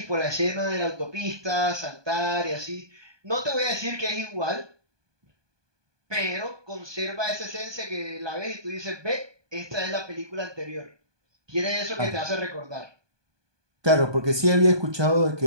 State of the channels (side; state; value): left; late; 1.2 ms